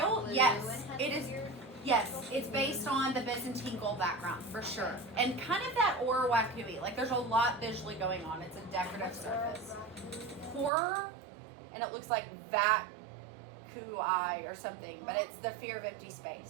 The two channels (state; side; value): drops out; left; at 10.7 s